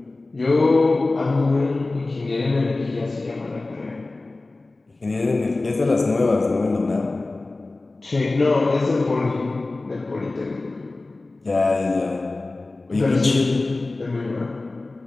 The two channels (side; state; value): right; quieter; 3.2 dB